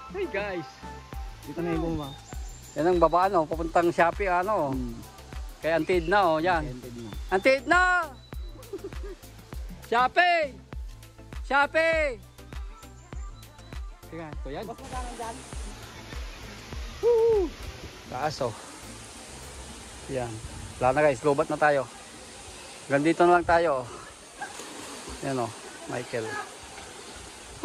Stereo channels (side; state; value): both; identical; correlation 1.00